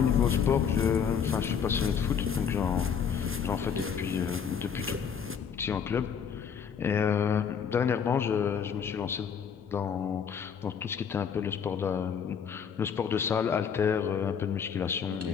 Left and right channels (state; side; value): quieter; right; 7.2 dB